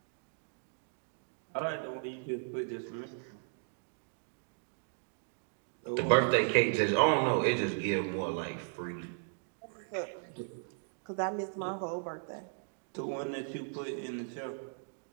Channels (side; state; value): left; silent; digital silence